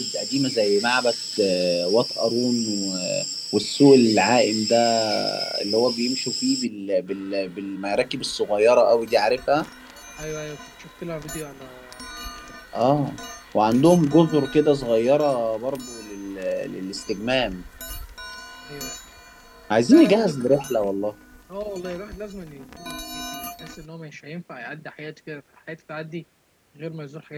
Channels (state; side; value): identical; both; correlation 1.00